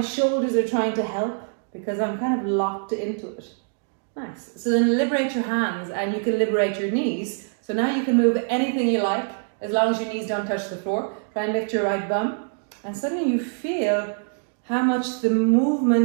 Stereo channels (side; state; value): left; silent; 62 dB below the other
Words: are trying to help because I'm kind of locked into it. Nice. So then liberate your hands, and you can liberate your knees. So now you can move anything you like as long as your knees don't touch the floor. Try and lift your right bum, and suddenly you feel how much the